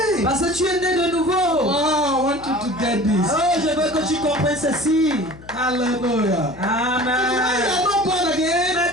Parce que tu es né de nouveau. Wow, I want you to get this. Oh, je veux que tu comprennes ceci. Hallelujah. When you Amen. are not born again, Mais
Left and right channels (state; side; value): noise; left; hum, 19 dB below the sound